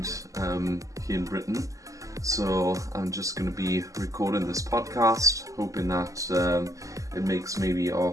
here in Britain, so I'm just going to be recording this podcast, hoping that it makes maybe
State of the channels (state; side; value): late; left; 0.16 ms